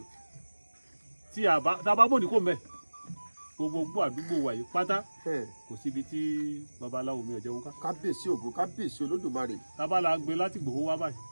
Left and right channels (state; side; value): inverted; both; correlation -1.00